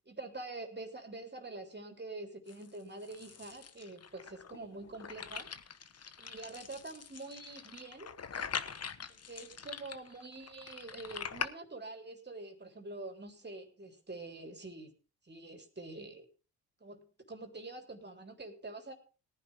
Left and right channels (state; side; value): normal; both; correlation 0.01